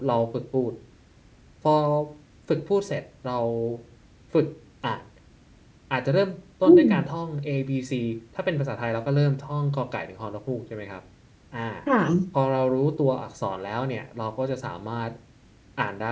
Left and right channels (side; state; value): both; identical; correlation 1.00